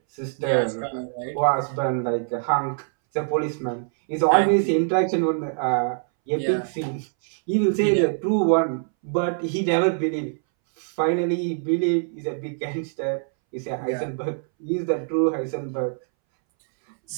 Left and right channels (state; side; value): silent; left; 63 dB below the other